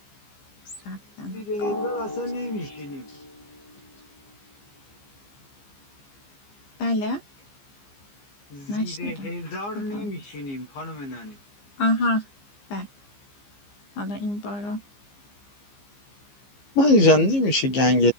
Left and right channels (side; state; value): right; late; 15 ms